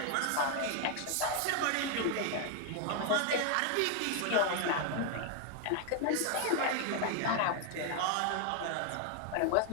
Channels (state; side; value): different; both; correlation 0.00